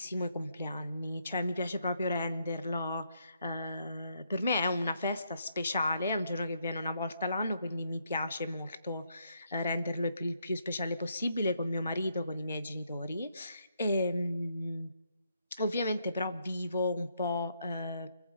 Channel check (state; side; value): inverted; both; correlation -0.75